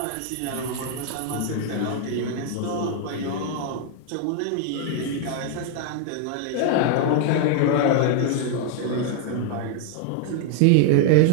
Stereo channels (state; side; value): different; both; correlation 0.00